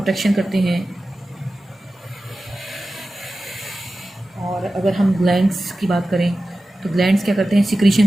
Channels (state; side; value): normal; both; correlation 0.94